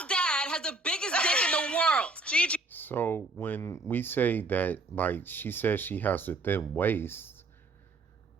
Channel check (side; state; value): left; quieter; 3.2 dB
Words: dad has the biggest dick in the world. Gigi. So when we say that, like, she says she has a thin waist,